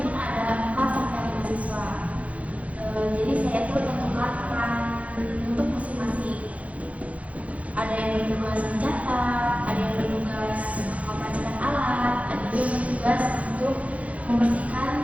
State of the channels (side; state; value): left; late; 0.066 ms